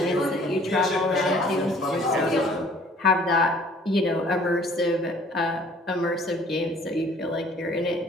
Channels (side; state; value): both; normal; correlation 0.55